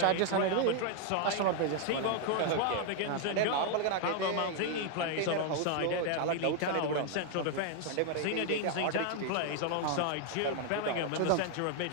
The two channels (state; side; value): different; both; correlation 0.00